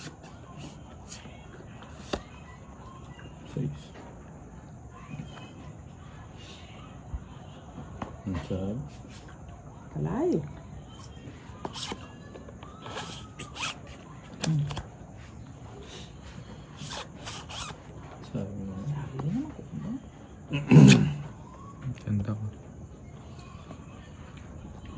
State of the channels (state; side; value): identical; both; correlation 1.00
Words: Kalay. Ganda ko.